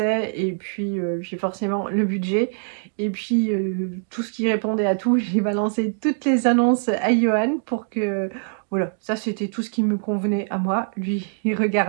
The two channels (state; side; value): silent; left; digital silence